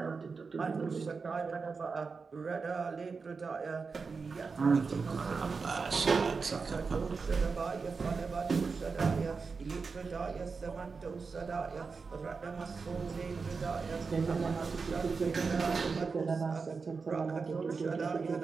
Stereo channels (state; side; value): quieter; left; 4.8 dB